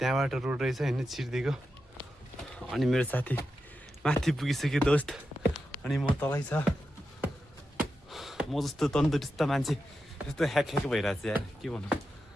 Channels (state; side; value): normal; both; correlation 0.89